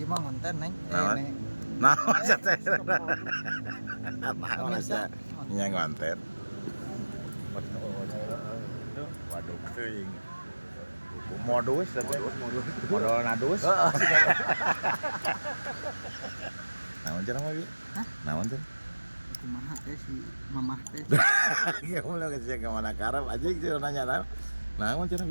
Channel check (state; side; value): inverted; both; correlation -1.00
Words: ngonten neng. naon naon teh naon asa nya ngonten waduh teuing modus modal nadus naon cenah mah naon cenah Kumaha teh si mamah teh. ya mulai ke mana karep aja gitu nanya naon cenah